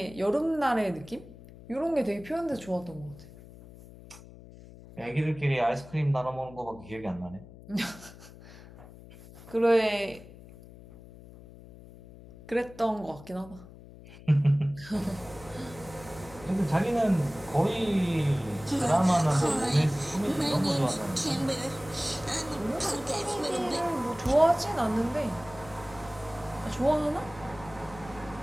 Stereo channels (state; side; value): noise; left; hum, 18 dB below the sound